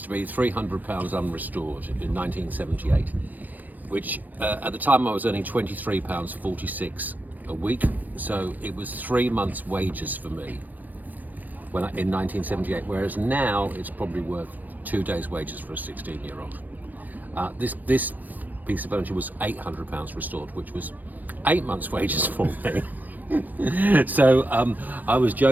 to be £300 unrestored in 1978, which at the time I was earning £23.46 a week, so it was 3 months' wages for me in 1978, whereas now it's probably worth 2 days' wages for a 16-year-old. This piece of furniture was £800 restored, which was 8 months' wages for me. So I was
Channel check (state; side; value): late; left; 0.083 ms